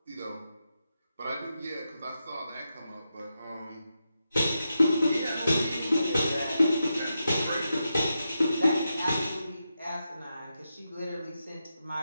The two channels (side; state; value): both; inverted; correlation -0.88